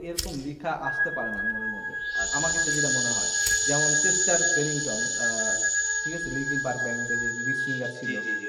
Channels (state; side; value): identical; both; correlation 1.00